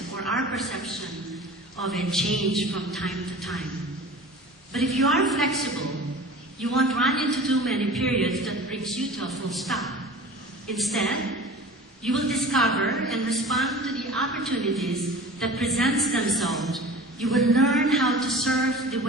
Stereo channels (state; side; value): normal; both; correlation 0.39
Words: or our perception of it change from time to time. But if you are flexible, you won't run into too many periods that brings you to a full stop. Instead, you will discover and respond to the opportunities that presents themselves. You will learn how to surf the